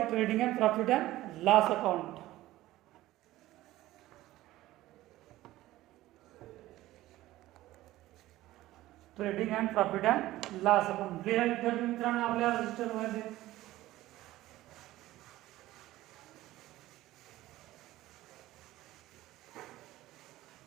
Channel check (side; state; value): left; quieter; 16.2 dB